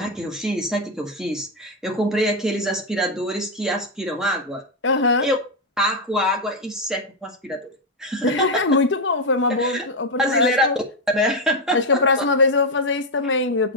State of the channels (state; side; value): normal; both; correlation 0.05